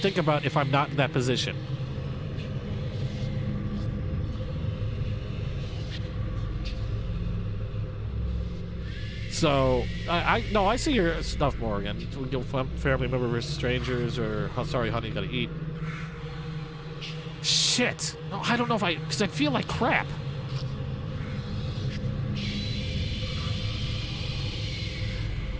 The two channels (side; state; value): both; identical; correlation 1.00